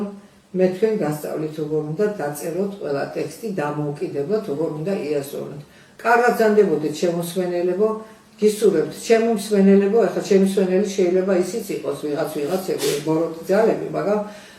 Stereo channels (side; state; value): both; identical; correlation 1.00